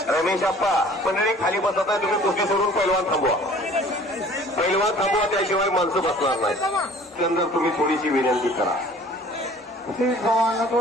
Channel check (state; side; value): normal; both; correlation 0.50